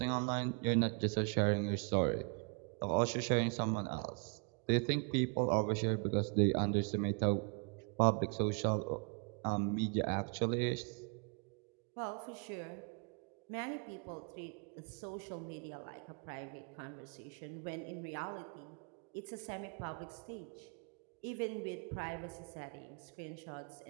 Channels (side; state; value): left; quieter; 38.0 dB